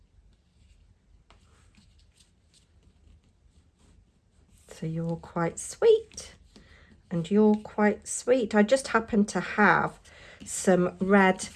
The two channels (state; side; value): identical; both; correlation 1.00